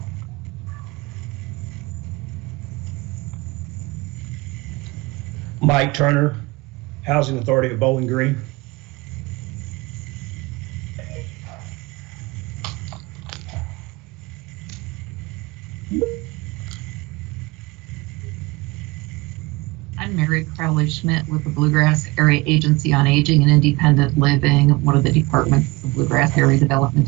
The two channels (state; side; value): quieter; left; 23.2 dB